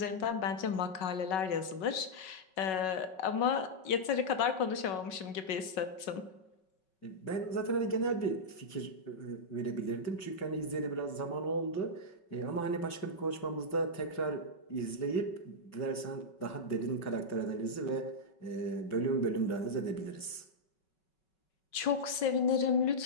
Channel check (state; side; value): late; right; 5.3 ms